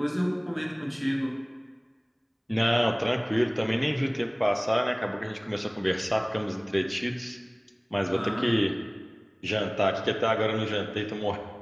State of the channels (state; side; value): identical; both; correlation 1.00